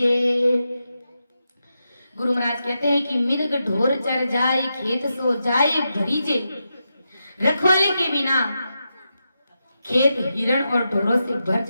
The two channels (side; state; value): both; inverted; correlation -0.87